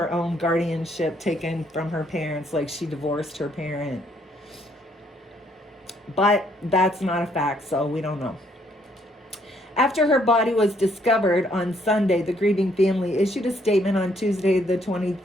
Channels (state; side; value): normal; both; correlation 0.69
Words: own guardianship taken from her parents, like she divorced her parent. But that's not a fact, so we don't know. After her body was discovered on Sunday, the grieving family issued a statement on Tuesday, the